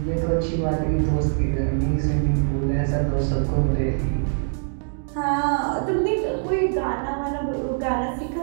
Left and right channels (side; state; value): left; silent; digital silence